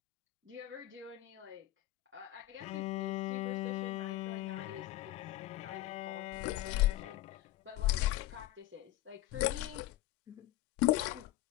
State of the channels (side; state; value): right; quieter; 15.5 dB